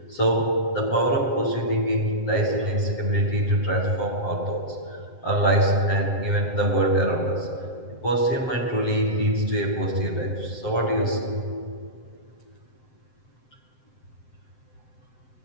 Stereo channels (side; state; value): right; late; 7.8 ms